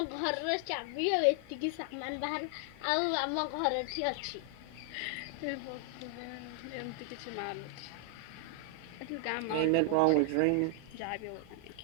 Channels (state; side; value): different; both; correlation 0.00